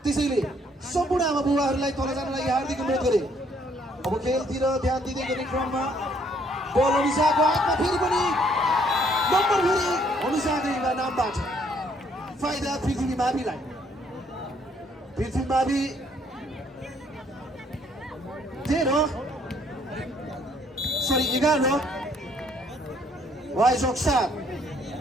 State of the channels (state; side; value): normal; both; correlation 0.66